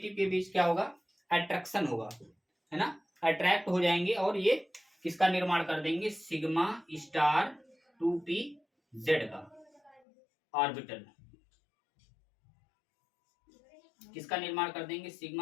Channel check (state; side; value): drops out; right; at 10.0 s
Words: के बीच क्या होगा, अट्रैक्शन होगा, है ना, अट्रैक्ट हो जाएंगे, और ये किसका निर्माण कर देंगे, सिग्मा स्टार 2p जेड का ऑर्बिटल, किसका निर्माण कर देंगे,